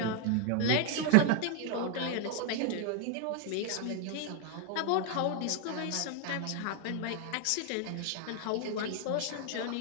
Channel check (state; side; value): different; both; correlation 0.00